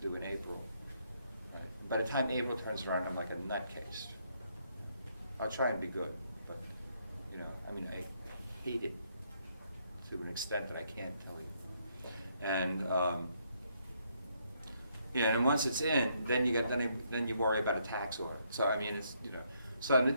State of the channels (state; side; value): inverted; both; correlation -0.73